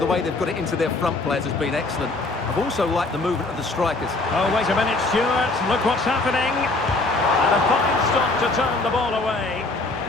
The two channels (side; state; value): right; quieter; 3.2 dB